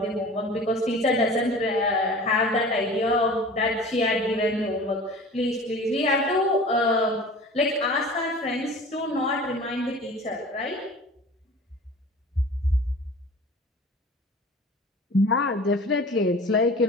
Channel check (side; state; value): both; normal; correlation 0.41